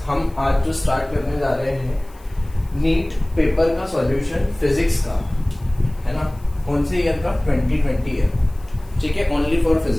हम आज जो start करने जा रहे हैं नीट पेपर का सॉल्यूशन फिजिक्स का, है ना। कौन से ईयर का? 2020 ईयर, ठीक है, ओनली फॉर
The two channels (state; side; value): noise; left; hiss, 28 dB below the sound